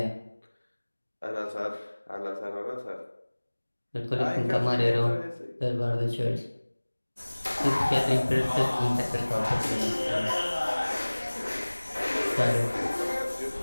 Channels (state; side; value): inverted; both; correlation -1.00